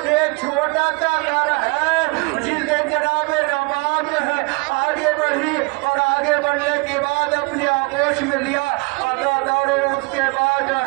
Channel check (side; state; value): left; quieter; 28.6 dB